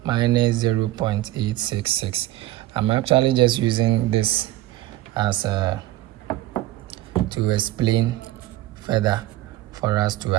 minus 0.866. I'm actually just using this as to explain further for us to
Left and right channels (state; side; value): quieter; left; 15.9 dB